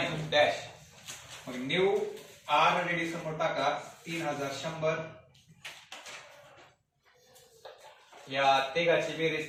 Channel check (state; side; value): identical; both; correlation 1.00